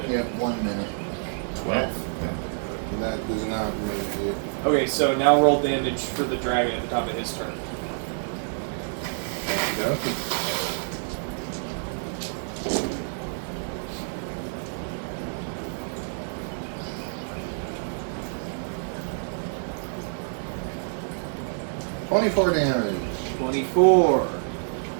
Yep, 1 minute. 12. That does not make it. Okay, so now roll damage for the dragon at the top of his turn. Okay. 24 damage. 24.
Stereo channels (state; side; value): silent; left; digital silence